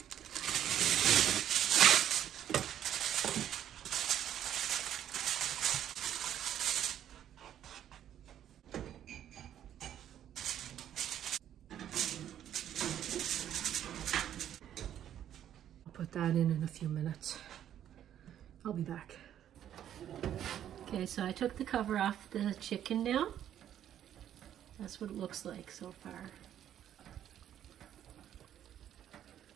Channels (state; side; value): quieter; left; 10.6 dB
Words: I'll put that in a few minutes. I'll be back. Okay, so I took the cover off the chicken now. That's what it looks like so far.